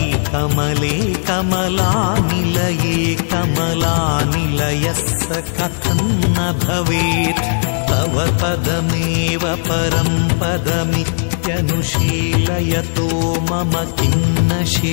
కమలే కమలానిలయే కమలానిలయస్స కథం న భవేత్ తవ పదమేవ పరం పదమిత్యనుశీలయతో మమ కిన్న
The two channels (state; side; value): silent; right; digital silence